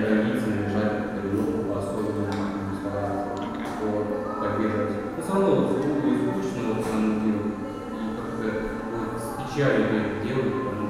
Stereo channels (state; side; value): identical; both; correlation 1.00